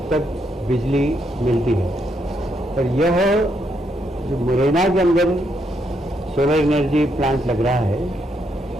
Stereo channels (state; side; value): normal; both; correlation 0.77